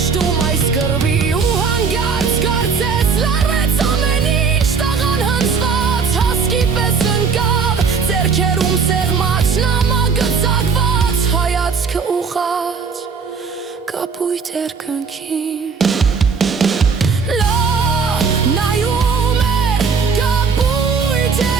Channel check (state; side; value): quieter; left; 5.4 dB